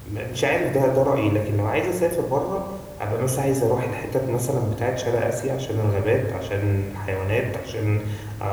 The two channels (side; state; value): both; identical; correlation 1.00